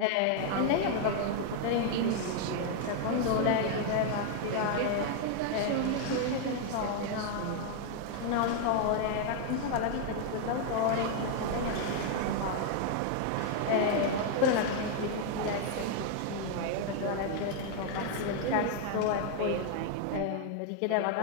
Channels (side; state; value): both; different; correlation 0.00